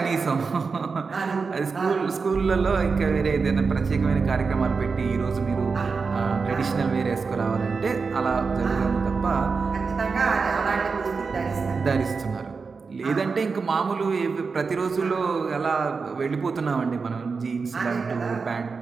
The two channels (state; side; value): quieter; left; 4.8 dB